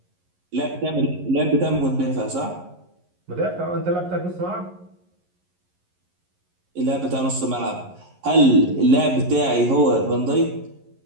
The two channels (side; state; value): left; late; 11 ms